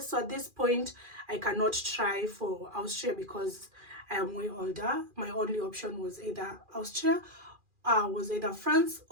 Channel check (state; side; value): late; left; 2.4 ms